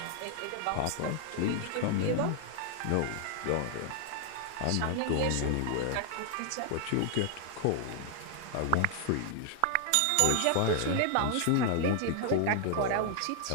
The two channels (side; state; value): both; different; correlation 0.00